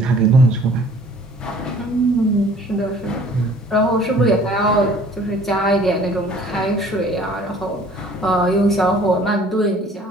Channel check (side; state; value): both; normal; correlation 0.53